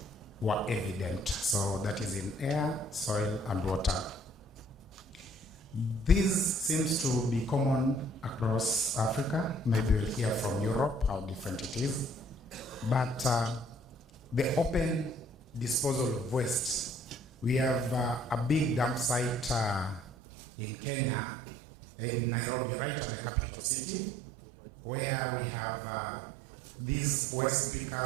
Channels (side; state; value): left; drops out; at 20.1 s